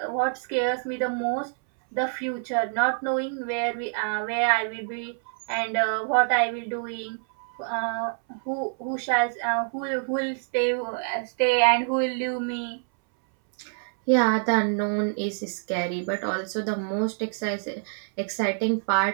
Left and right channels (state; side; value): silent; left; 61 dB below the other